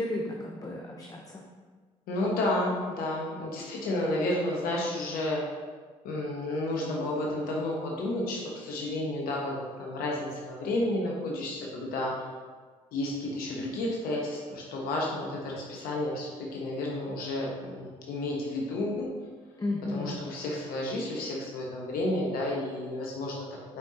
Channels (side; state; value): both; normal; correlation 0.54